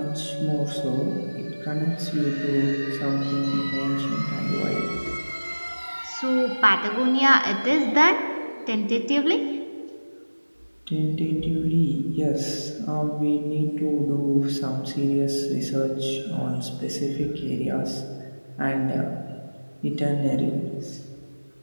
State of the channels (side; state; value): both; inverted; correlation -1.00